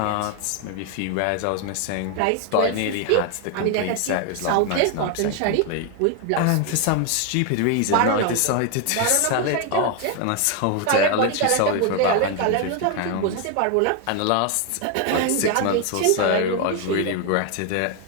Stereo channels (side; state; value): both; different; correlation 0.01